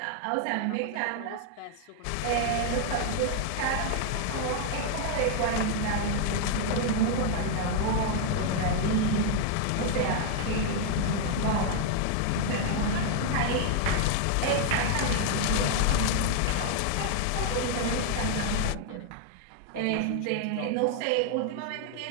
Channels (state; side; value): different; both; correlation 0.00